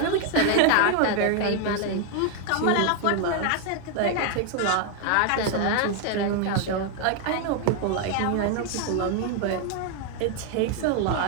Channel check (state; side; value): different; both; correlation 0.01